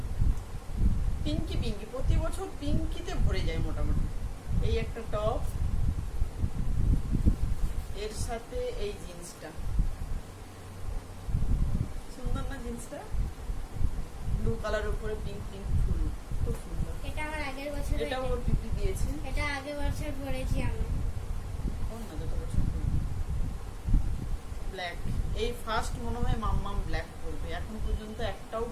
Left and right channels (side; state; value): both; identical; correlation 1.00